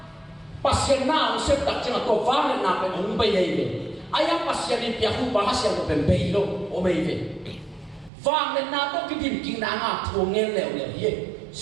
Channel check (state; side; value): drops out; left; at 8.1 s